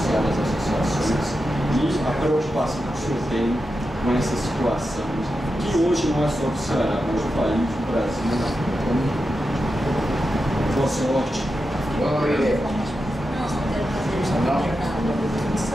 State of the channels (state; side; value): normal; both; correlation 0.89